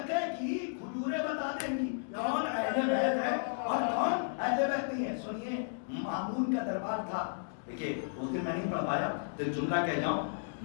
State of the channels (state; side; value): silent; right; digital silence